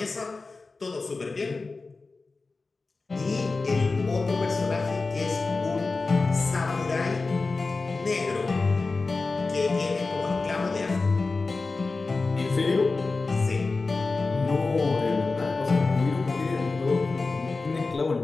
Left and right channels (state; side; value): quieter; right; 3.8 dB